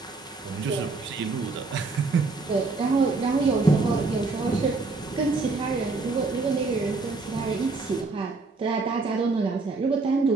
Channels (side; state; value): left; quieter; 3.8 dB